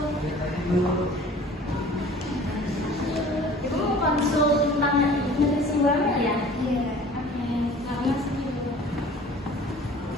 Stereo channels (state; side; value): normal; both; correlation 0.46